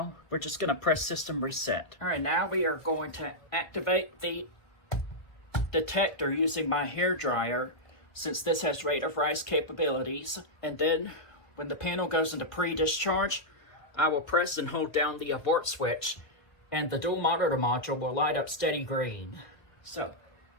we're just gonna press system reset. All right, now we are going to activate the detector using my hair dryer, since this has rate of rise capabilities. And then when the panel goes into pre-discharge, I will press and hold down the abort switch and the dual monitor module will light up steady green. So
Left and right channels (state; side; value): late; right; 1.4 ms